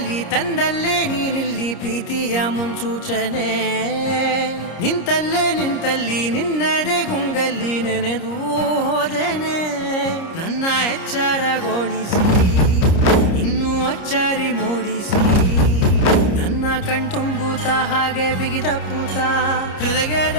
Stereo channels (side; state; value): right; late; 30 ms